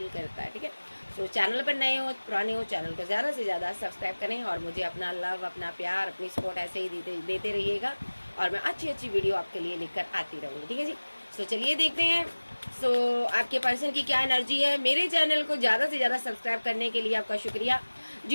करता है। ठीक है, चैनल पर नए हो, पुराने हो, चैनल को ज्यादा से ज्यादा सब्सक्राइब करें और मुझे अपना लव, अपना प्यार, अपनी सपोर्ट ऐसे ही देते रहिएगा और मैं अच्छी अच्छी वीडियो आपके लिए लेकर आती रहूंगी। ठीक है जी, चलिए देखते हैं आपके पर्सन की क्या एनर्जी है। मेरे चैनल को ज्यादा से ज्यादा सब्सक्राइब करने के लिए आपका शुक्रिया।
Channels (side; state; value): both; inverted; correlation -1.00